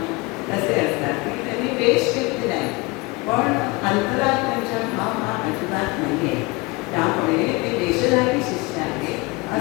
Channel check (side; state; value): right; quieter; 24.6 dB